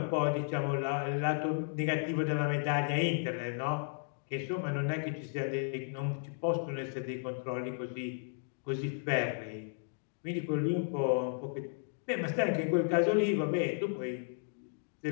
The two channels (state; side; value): silent; right; digital silence